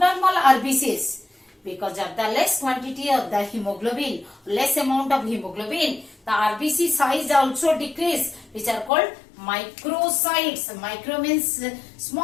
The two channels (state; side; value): drops out; right; at 8.9 s